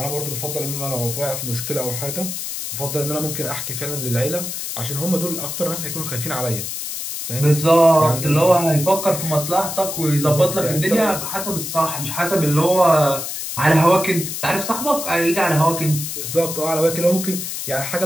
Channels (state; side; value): noise; left; hiss, 5 dB below the sound